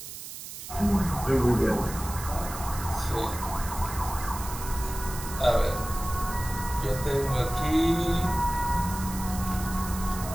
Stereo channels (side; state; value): right; noise; hiss, 10 dB below the sound